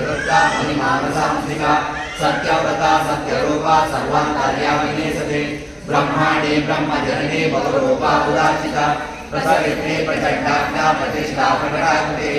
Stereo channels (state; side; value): identical; both; correlation 1.00